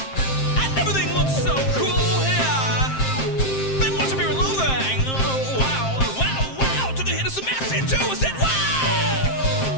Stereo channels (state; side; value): late; right; 7.6 ms